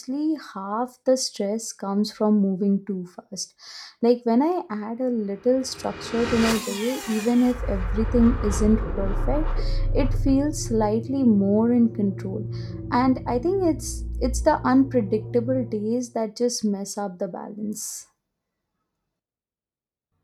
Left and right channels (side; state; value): both; identical; correlation 1.00